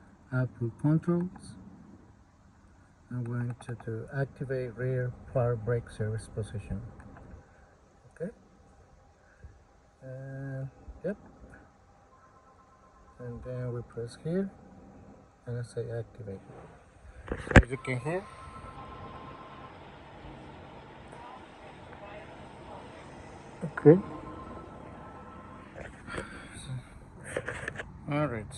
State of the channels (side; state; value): both; identical; correlation 1.00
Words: output controls. I'm going to activate rear power brake service position. Okay. Yep. And then we press here and I say activate. So as you can hear, okay. Alright,